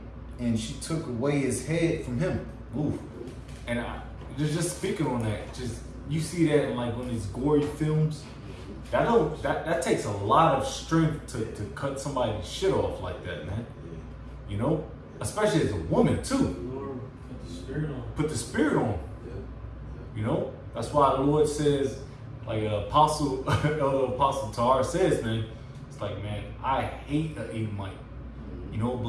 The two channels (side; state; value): both; identical; correlation 1.00